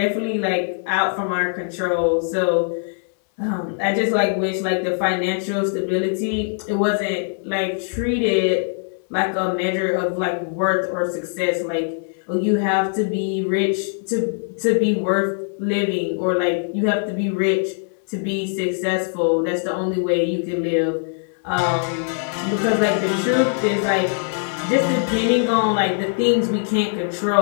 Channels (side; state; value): right; silent; digital silence